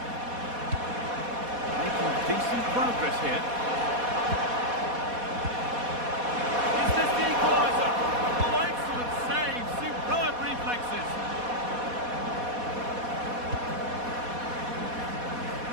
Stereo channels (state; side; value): late; left; 4.1 ms